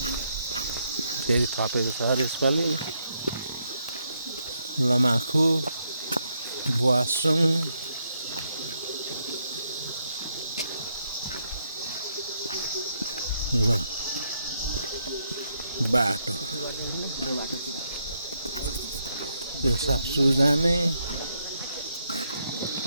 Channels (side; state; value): both; inverted; correlation -0.77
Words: फेरि थपेको छ अरे यसपालि। लमाखु, बुवासुङ, ल बाटो यो साप्सु जाने,